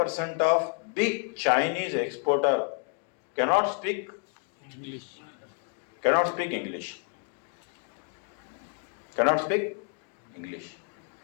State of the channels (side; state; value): right; quieter; 39.2 dB